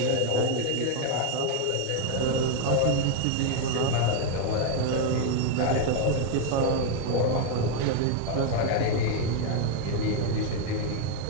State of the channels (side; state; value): both; different; correlation 0.01